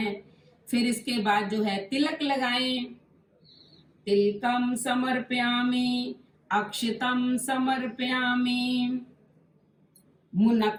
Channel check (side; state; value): both; identical; correlation 1.00